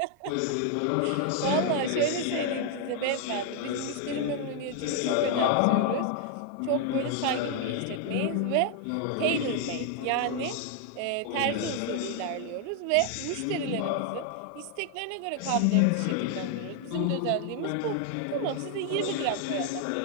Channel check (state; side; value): different; both; correlation 0.00